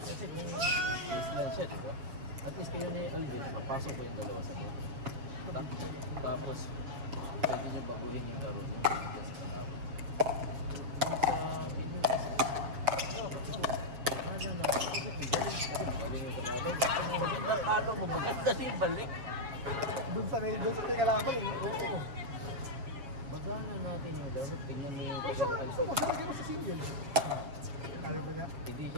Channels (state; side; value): late; left; 7.2 ms